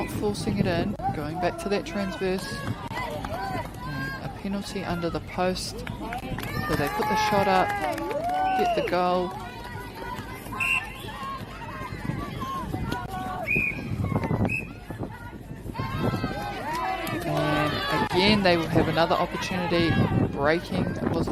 forcing it in. Going back to that transverse. And a penalty under the post. So they put the shot up. Get the goal. And again they will have another opportunity. Breaking was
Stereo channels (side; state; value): both; identical; correlation 1.00